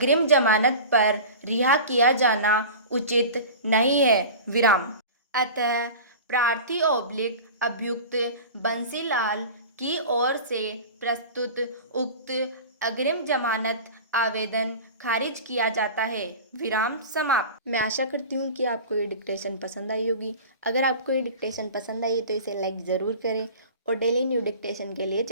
जमानत पर रिहा किया जाना उचित नहीं है। विराम। अतः प्रार्थी ओब्लिक अभियुक्त बंसीलाल की ओर से प्रस्तुत उक्त अग्रिम जमानत आवेदन खारिज किया जाता है। विराम समाप्त। मैं आशा करती हूँ कि आपको ये डिक्टेशन पसंद आई होगी। अगर आपको ये डिक्टेशन पसंद आई है तो इसे लाइक ज़रूर करें और डेली न्यू डिक्टेशन के लिए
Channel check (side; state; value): both; inverted; correlation -0.35